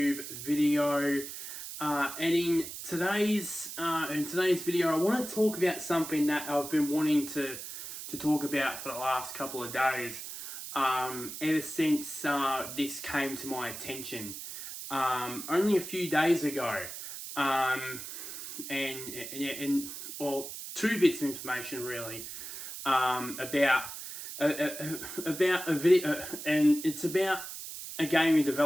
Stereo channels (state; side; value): noise; right; hiss, 9 dB below the sound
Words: video. In today's video, I want to talk about something that I've been wanting to talk about for the last couple of days. Ever since this came to my attention, only a few days ago, and well, two bits of information really, about a video, and it's about a gaming